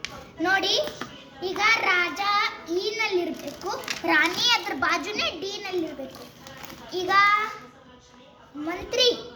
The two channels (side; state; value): both; identical; correlation 1.00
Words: ನೋಡಿ. ಈಗ ರಾಜ ಇ ನಲ್ಲಿರಬೇಕು, ರಾಣಿ ಅದ್ರ ಬಾಜುನೇ ಡಿ ನಲ್ಲಿರಬೇಕು. ಈಗ ಮಂತ್ರಿ